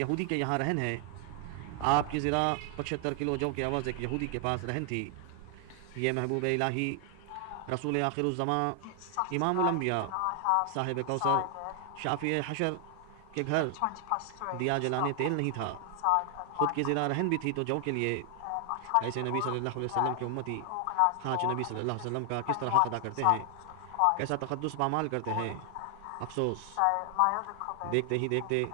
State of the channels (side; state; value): both; different; correlation 0.00